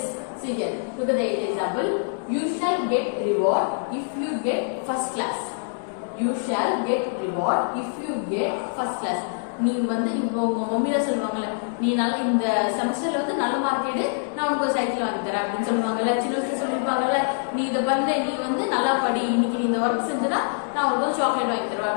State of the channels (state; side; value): silent; right; digital silence